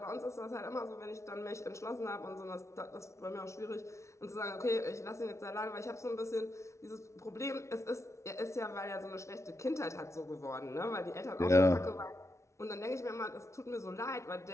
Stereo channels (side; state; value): right; late; 0.14 ms